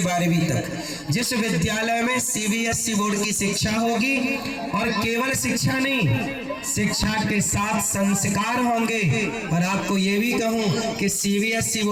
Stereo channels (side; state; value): both; identical; correlation 1.00